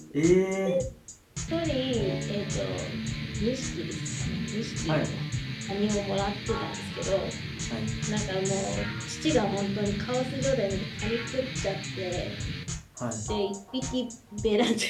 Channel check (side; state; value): both; identical; correlation 1.00